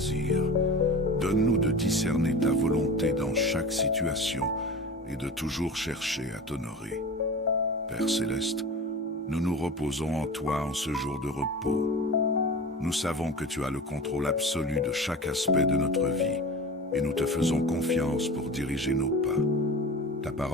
Donne-nous de discerner ta volonté dans chaque situation et de toujours chercher à t'honorer. Père Céleste, nous nous reposons en toi en ce jour de repos. Nous savons que tu as le contrôle absolu de chaque aspect de notre vie et nous te faisons confiance pour diriger nos pas. Ta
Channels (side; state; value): both; normal; correlation 0.33